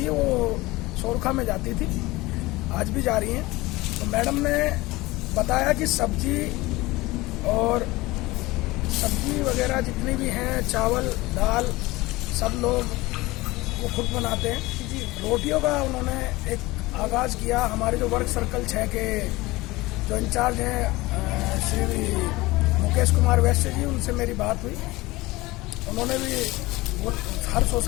है वो सोरखा में जाती थी, आज भी जा रही हैं। तो मैडम ने बताया कि सब्जी वगैरह जितनी भी हैं, चावल दाल, सब लोग वो खुद बनाते हैं। रोटियों का उन्होंने एक आगाज़ किया। हमारे जो वर्क सर्कल 6 के जो इंचार्ज हैं श्री मुकेश कुमार वैश्य जी, उनसे मेरी बात हुई। उन्होंने भी वो हर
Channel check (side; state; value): right; quieter; 20.6 dB